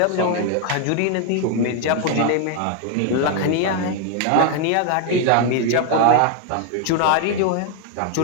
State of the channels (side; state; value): both; different; correlation 0.00